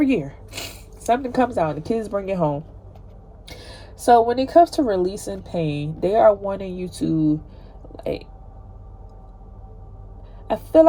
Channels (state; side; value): identical; both; correlation 1.00